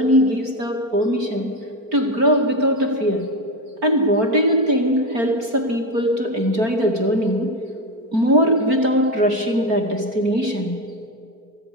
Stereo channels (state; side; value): late; left; 4.4 ms